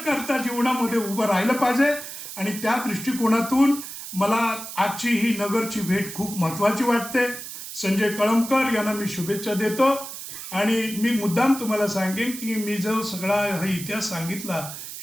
करता जीवनामध्ये उभं राहिलं पाहिजे आणि त्या दृष्टिकोनातून मला आजची ही नगरची भेट खूप महत्त्वाची वाटते. संजय कळमकर यांना मी शुभेच्छा देतो आणि मी मुद्दाम तुम्हाला सांगेन की मी जो सगळा हा इतिहास सांगितला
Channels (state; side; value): noise; right; hiss, 10 dB below the sound